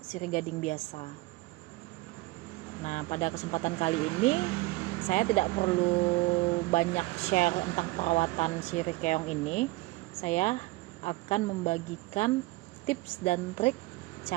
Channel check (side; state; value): left; quieter; 20.7 dB